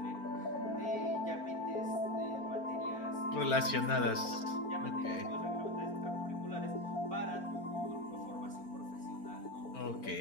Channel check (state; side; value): late; right; 4.4 ms